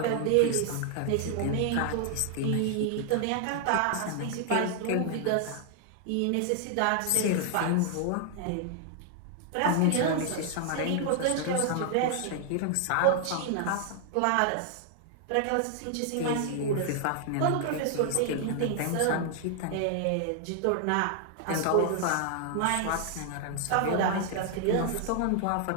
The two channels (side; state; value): both; different; correlation 0.00